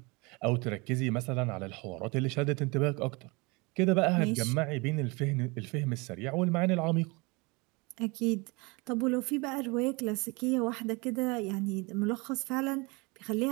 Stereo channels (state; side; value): quieter; left; 27.1 dB